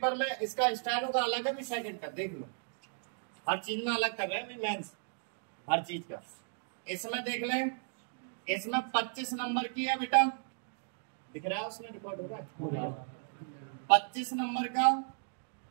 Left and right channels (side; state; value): left; silent; digital silence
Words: में इसका स्टेनो का अलग है भी सेकंड का, देख लो हर चीज में अलग कर रहे हैं मेंस, हर चीज का। इसमें देख लें, इसमें 25 नंबर की है बेटा, दिख रहा है उसमें रिकॉर्ड हो रहा है 25 नंबर का।